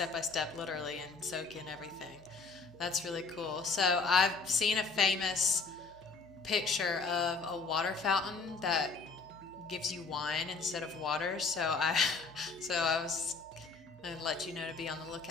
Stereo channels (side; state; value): right; quieter; 4.4 dB